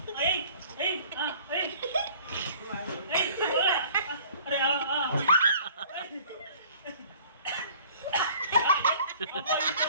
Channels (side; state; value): both; inverted; correlation -0.51